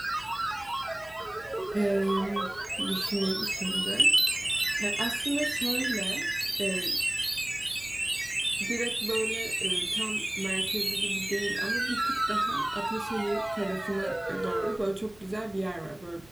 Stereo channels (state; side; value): noise; right; hum, 25 dB below the sound